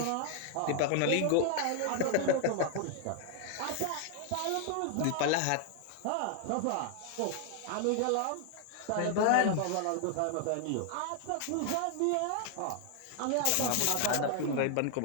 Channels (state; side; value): different; both; correlation 0.00